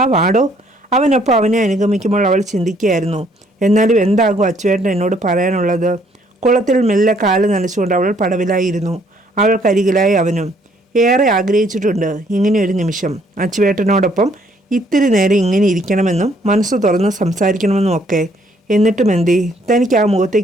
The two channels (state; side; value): normal; both; correlation 0.65